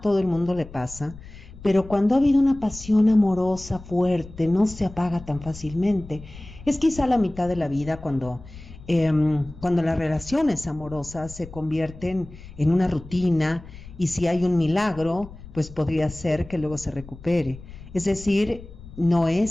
el mundo le pasa, pero cuando ha habido una pasión amorosa fuerte, no se apaga tan fácilmente. Es quizá la mitad de la vida cuando las relaciones amorosas se convierten en una rutina y si hay un milagro, pues podría ser que luego se recupere. Es decir, no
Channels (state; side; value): noise; left; rumble, 17 dB below the sound